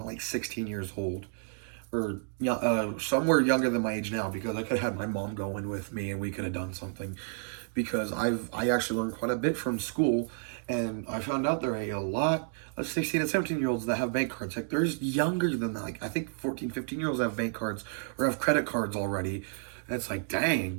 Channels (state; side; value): silent; left; digital silence